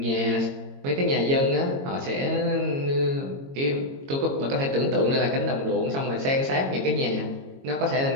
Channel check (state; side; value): late; left; 22 ms